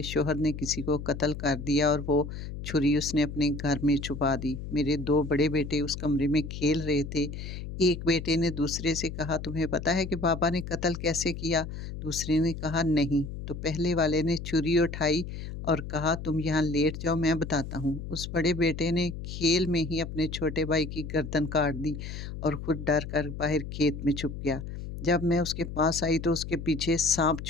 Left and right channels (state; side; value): noise; left; hum, 8 dB below the sound